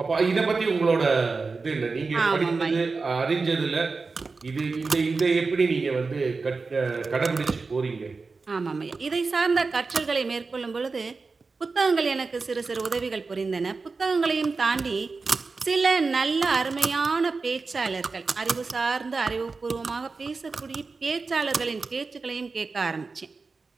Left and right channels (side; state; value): left; quieter; 4.2 dB